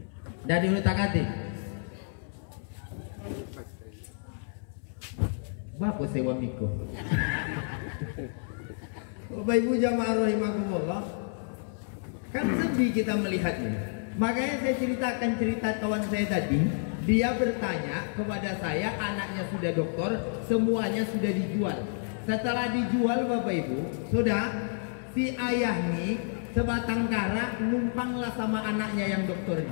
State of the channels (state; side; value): silent; right; 58 dB below the other